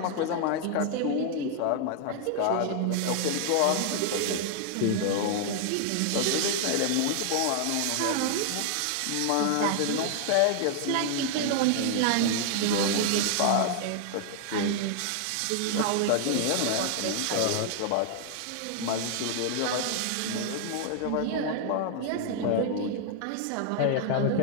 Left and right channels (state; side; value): different; both; correlation 0.00